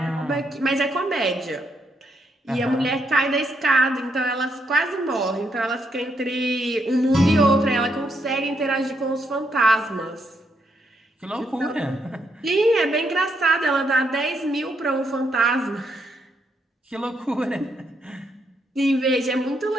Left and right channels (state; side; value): normal; both; correlation 0.77